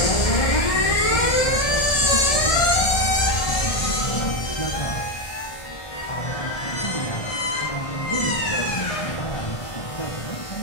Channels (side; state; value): right; late; 1.7 ms